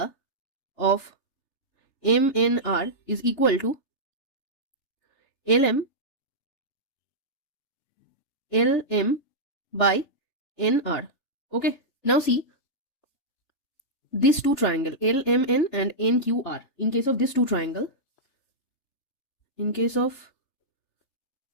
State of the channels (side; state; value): right; late; 3.3 ms